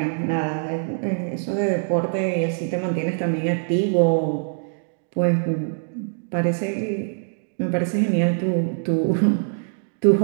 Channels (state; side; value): silent; left; digital silence